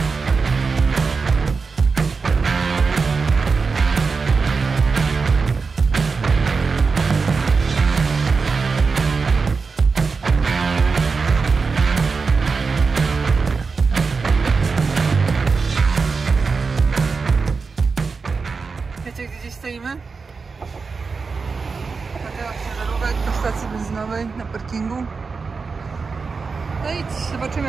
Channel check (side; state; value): left; quieter; 4.7 dB